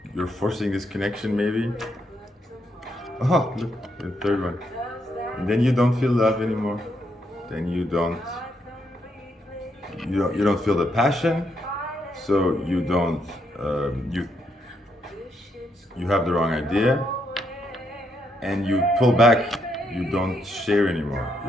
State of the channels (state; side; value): normal; both; correlation 0.77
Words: you're forcing this connection, maybe. Oh, look, the third one. And then you don't feel love anymore. Then you don't feel the passion. So you don't you have the wrong idea, and you pull back. You don't share anymore.